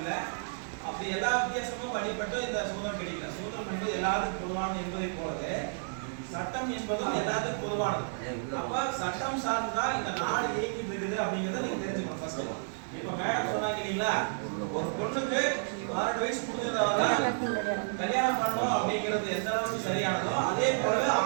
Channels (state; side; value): silent; left; 57 dB below the other